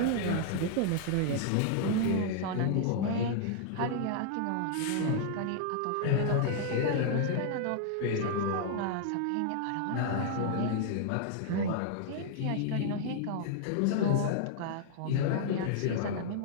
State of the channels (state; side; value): different; both; correlation -0.01